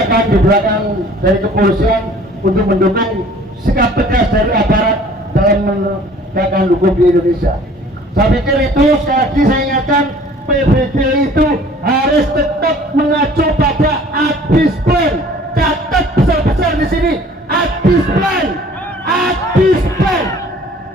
di belakang dari kepolisian untuk mendukung sikap tegas dari aparat dalam menegakkan hukum di Indonesia. Saya pikir itu sekali lagi saya ingatkan, PBG itu harus tetap mengacu pada ABIS Plan. Catat besar-besar di sini, ABIS Plan, ABIS Plan.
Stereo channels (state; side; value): normal; both; correlation 0.52